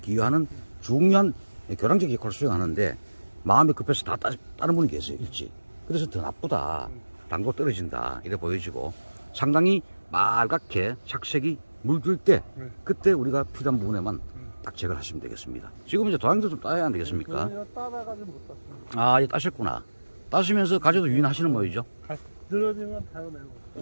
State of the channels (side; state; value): both; inverted; correlation -1.00